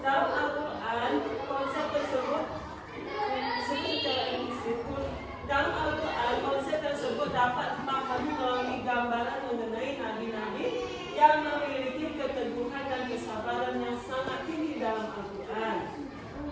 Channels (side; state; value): both; identical; correlation 1.00